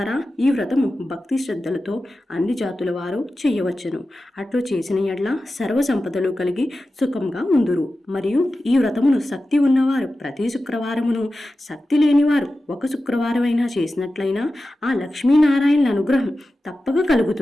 ఈ వ్రతము భక్తి శ్రద్ధలతో అన్ని జాతుల వారు చేయవచ్చును. అట్లు చేసిన ఎడ్ల సర్వ సంపదలు కలిగి సుఖంగా ఉందురు. మరియు ఈ వ్రతమును శక్తి ఉన్నవారు ప్రతి శుక్రవారమును, శక్తి లేనివారు ఒక శుక్రవారమైనా చేసినట్లయినా ఆ లక్ష్మీనారాయణుల అనుగ్రహం తప్పక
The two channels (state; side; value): normal; both; correlation 0.93